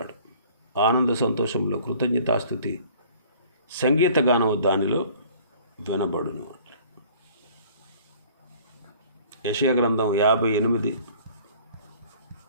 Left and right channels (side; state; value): both; inverted; correlation -0.52